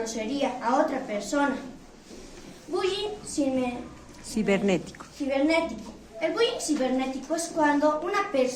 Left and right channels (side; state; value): both; identical; correlation 1.00